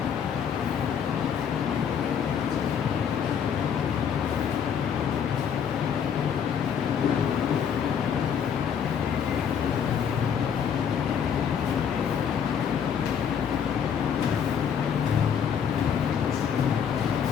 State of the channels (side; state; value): right; quieter; 7.8 dB